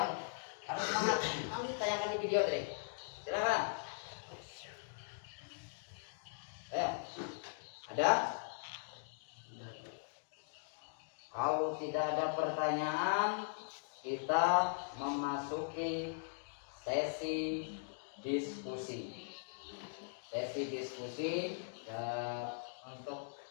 harus semangat. Nanti ditanyakan di video tadi. Silakan. Ya. Ada? Kalau tidak ada pertanyaan, kita memasuki sesi diskusi. Untuk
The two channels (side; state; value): right; silent; digital silence